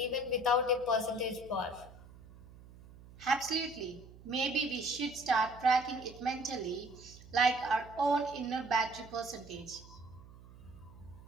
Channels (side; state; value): right; noise; hum, 20 dB below the sound